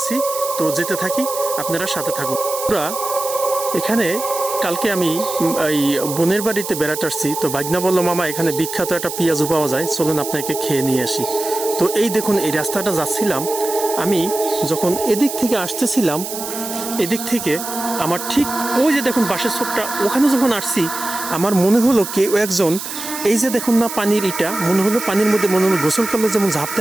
তো যেতে থাকি, আপনারা সাথে থাকুন। পুরা এখানে কালকে আমি এই বোনের বাড়িতে বেড়াতে আসছি। তো ভাগনা বলল, মামা এখানে বিখ্যাত একটা পেঁয়াজু পাওয়া যায়, চলুন আপনাকে খেয়ে নিয়ে আসি। তো এই দেখুন এই রাস্তাটা যাচ্ছিলাম আমি, যখন এদিক থেকে আসতেছিলাম, এদিক থেকে আমার ঠিক ওই যে দেখুন বাঁশের ছোপটা, ওখানে যখন আসছি আমার মনে হলো কেউ একজন, এই যে দেখুন না পানির ইটা, মনে হলো পানির মধ্যে মনে হলো গোসল করলে যেমন ঝাঁপ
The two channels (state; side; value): noise; right; hiss, 7 dB below the sound